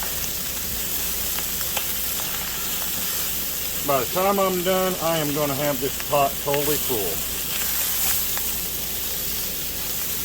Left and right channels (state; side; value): identical; both; correlation 1.00